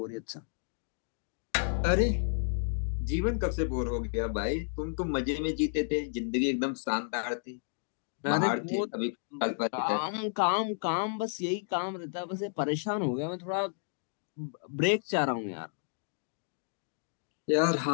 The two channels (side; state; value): right; silent; digital silence